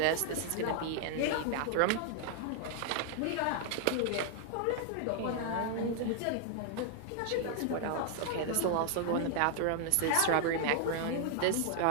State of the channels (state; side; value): different; both; correlation -0.01